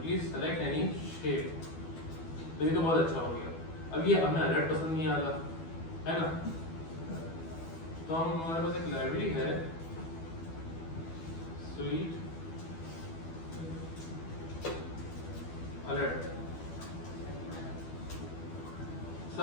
select any shape. तो ये तो बहुत अच्छा हो गया। अब ये हमें अलर्ट पसंद नहीं आ रहा है ना, तो हम हमारे पास एक लाइब्रेरी है स्वीट अलर्ट,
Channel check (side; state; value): right; late; 12 ms